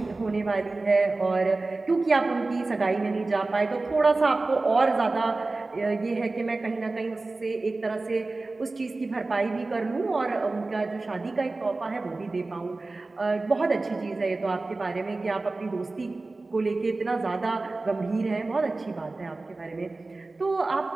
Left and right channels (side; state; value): left; quieter; 3.3 dB